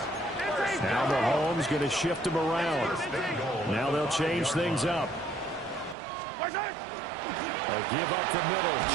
Now Mahomes going to shift him around. Now they'll change things up. A give up the middle.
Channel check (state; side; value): drops out; left; at 6.0 s